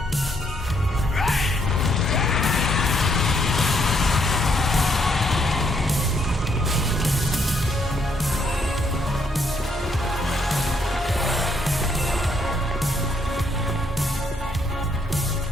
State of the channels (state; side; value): normal; both; correlation 0.73